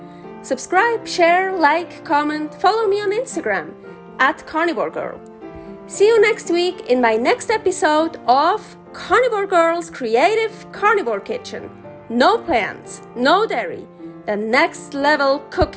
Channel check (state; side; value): identical; both; correlation 1.00